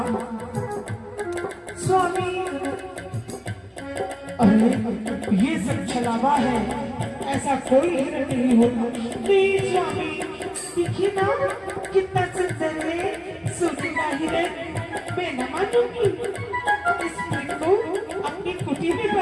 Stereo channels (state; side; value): identical; both; correlation 1.00